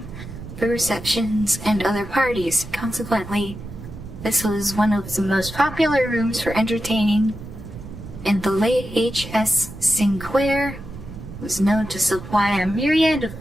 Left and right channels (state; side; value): noise; right; rumble, 12 dB below the sound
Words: for receptions and other parties. Consequently, this was one of the most popular rooms for entertaining, and the late H.S. Sinclair was known to supply a myriad